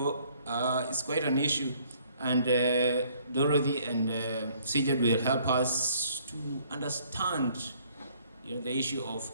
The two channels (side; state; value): both; inverted; correlation -0.61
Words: it's quite an issue. And Dorothy and CJ will help us to understand, you know, the issue of